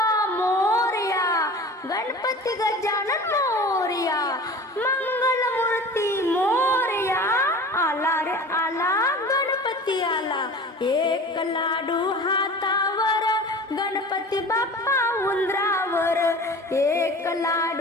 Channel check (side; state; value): both; normal; correlation 0.38